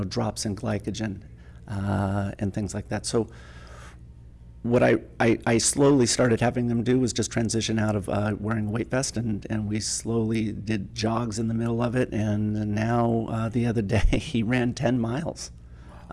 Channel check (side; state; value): both; identical; correlation 1.00